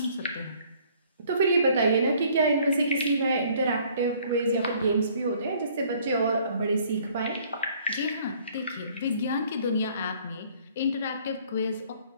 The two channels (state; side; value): inverted; both; correlation -0.58